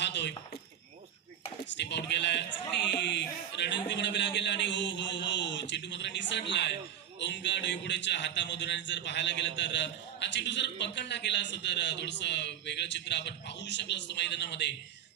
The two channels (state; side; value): quieter; left; 9.7 dB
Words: स्टेप आउट केलाय. चांगली रणनीती म्हणावी लागेल आणि हो हो हो चेंडू मात्र निसटलाय ओंकार डोईपुडेच्या हातामधून. आणि जर पाहायला गेलं तर हा चेंडू जर पकडला गेला असं तर थोडस वेगळं चित्र आपण पाहू शकलो असतो मैदानामध्ये.